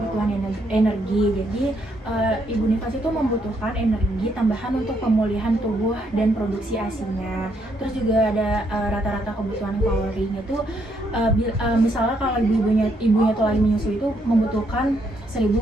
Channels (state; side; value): normal; both; correlation 0.74